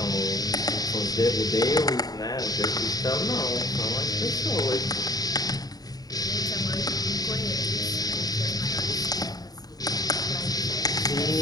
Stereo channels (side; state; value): right; late; 0.18 ms